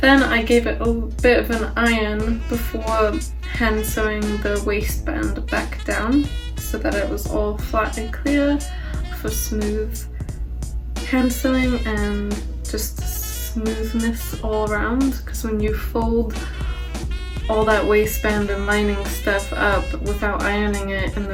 I gave it a bit of an iron before hand sewing the waistband back down so that it was all flat and clear for smooth hand sewing and just smoothness all around, because when you fold all that waistband and lining stuff up without ironing it and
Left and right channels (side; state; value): both; identical; correlation 1.00